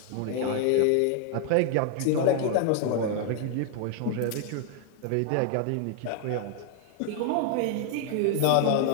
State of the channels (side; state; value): both; different; correlation 0.00